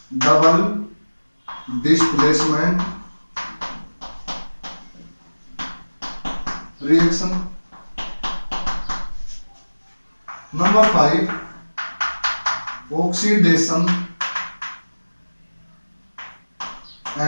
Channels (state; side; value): inverted; both; correlation -1.00